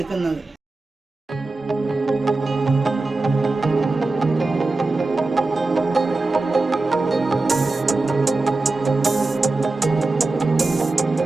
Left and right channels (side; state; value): left; quieter; 3.3 dB